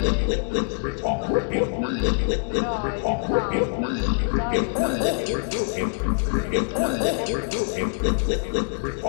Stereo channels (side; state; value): right; silent; digital silence